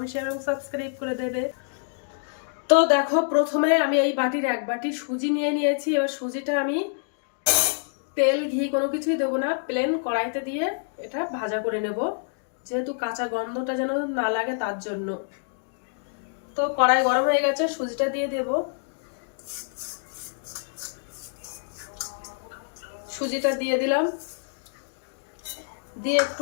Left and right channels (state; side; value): silent; right; digital silence